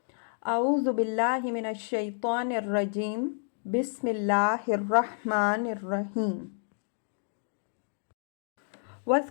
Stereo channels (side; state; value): right; silent; 58 dB below the other